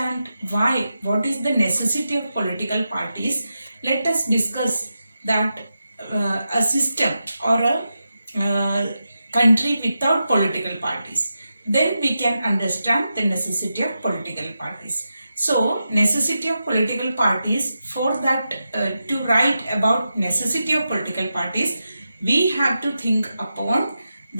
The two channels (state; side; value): inverted; both; correlation -0.89